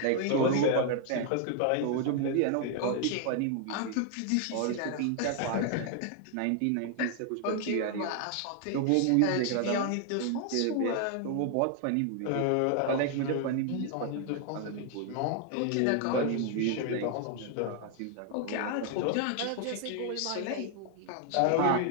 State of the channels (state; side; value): different; both; correlation 0.00